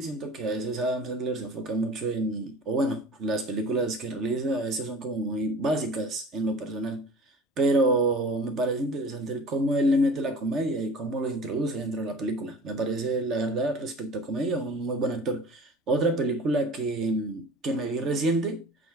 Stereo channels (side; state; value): both; normal; correlation 0.41